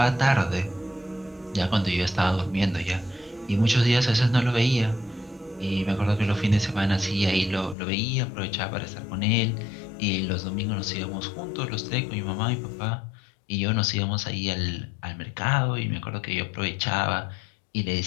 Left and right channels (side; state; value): right; drops out; at 7.8 s